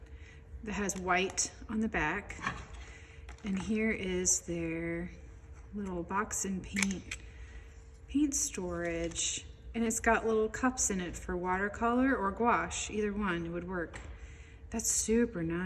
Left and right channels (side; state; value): both; identical; correlation 1.00